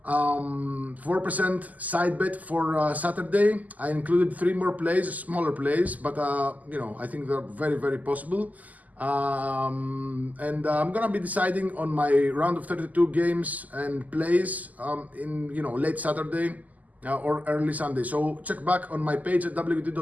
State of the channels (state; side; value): late; left; 0.078 ms